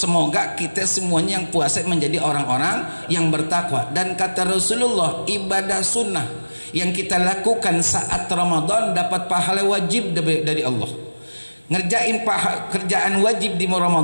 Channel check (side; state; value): both; inverted; correlation -1.00